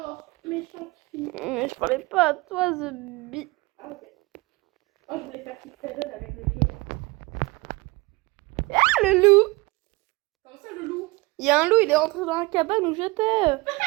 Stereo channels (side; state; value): left; quieter; 23.6 dB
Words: méchante fille. Mais je parlais pas à toi, The Bee. Ah, ok. Oh, je voulais faire Kick Seven avec le jeu. Ah, le loup. Comment ça, le loup? Il y a un loup, il est rentré dans la cabane où j'étais.